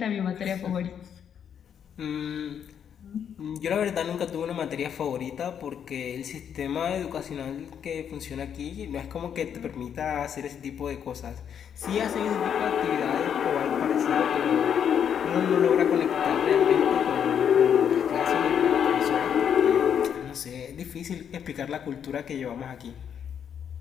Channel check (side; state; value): right; quieter; 8.4 dB